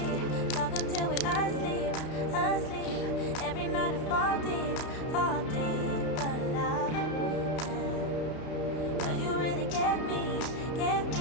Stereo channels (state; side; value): late; right; 32 ms